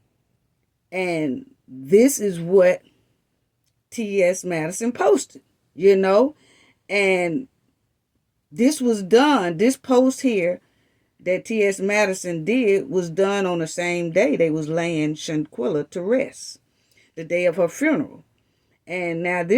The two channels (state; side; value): identical; both; correlation 1.00